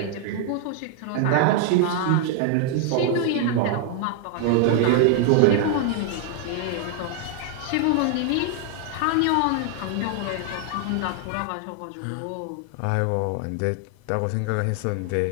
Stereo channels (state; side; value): different; both; correlation 0.00